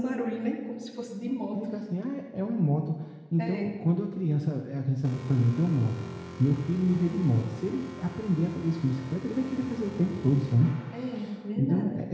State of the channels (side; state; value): both; identical; correlation 1.00